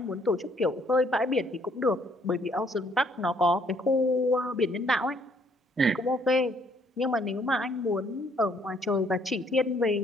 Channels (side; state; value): both; normal; correlation 0.65